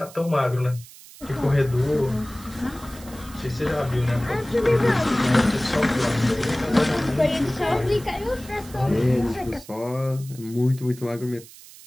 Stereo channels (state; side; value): noise; right; hiss, 19 dB below the sound